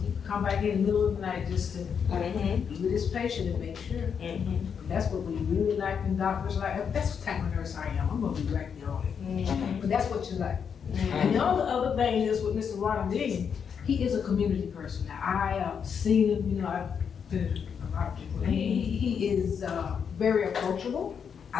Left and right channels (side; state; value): right; quieter; 7.0 dB